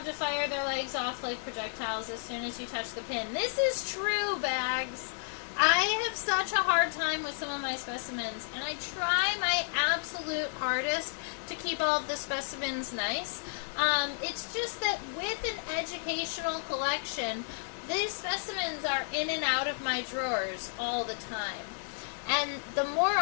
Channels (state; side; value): silent; right; digital silence